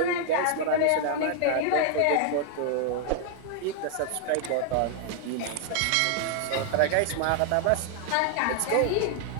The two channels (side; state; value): both; different; correlation 0.00